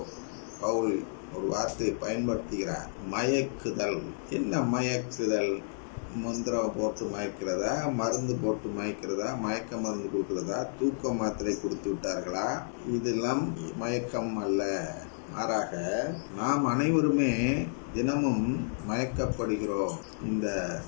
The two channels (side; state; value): right; silent; digital silence